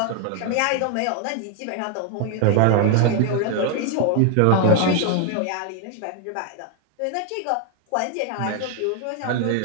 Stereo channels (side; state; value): both; different; correlation 0.00